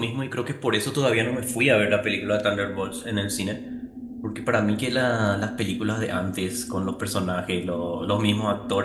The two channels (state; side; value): identical; both; correlation 1.00